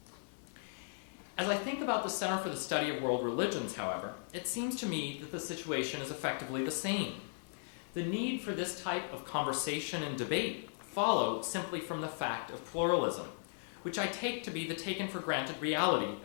As I think about the Center for the Study of World Religions, however, it seems to me that the situation is effectively the same. The need for this type of conversation and debate follow simply from the fact of pluralism, which I take to be the taken-for-granted reality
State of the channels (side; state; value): right; silent; digital silence